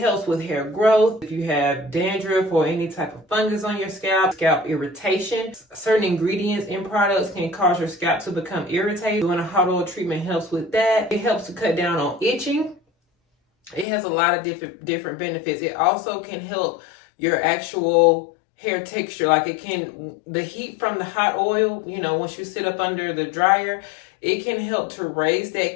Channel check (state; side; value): drops out; right; at 13.9 s